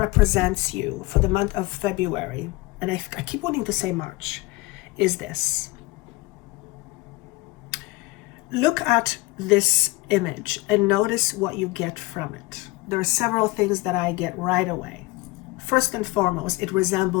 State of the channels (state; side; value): quieter; right; 22.3 dB